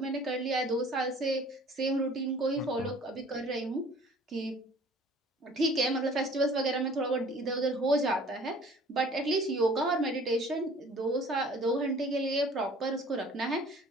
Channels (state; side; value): normal; both; correlation 0.51